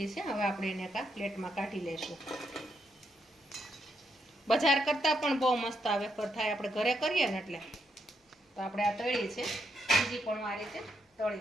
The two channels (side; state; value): both; normal; correlation 0.79